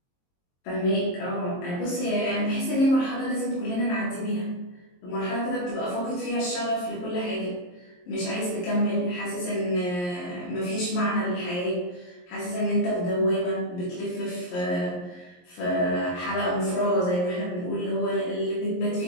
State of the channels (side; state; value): right; late; 22 ms